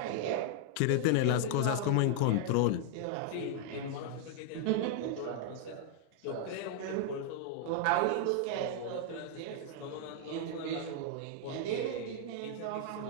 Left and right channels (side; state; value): both; different; correlation -0.01